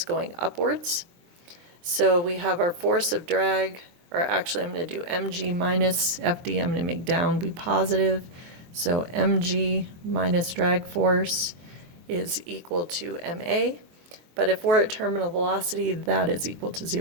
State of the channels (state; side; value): late; left; 23 ms